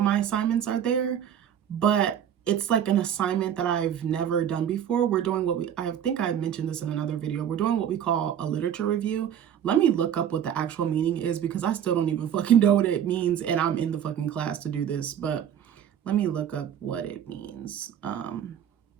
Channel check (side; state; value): left; quieter; 9.4 dB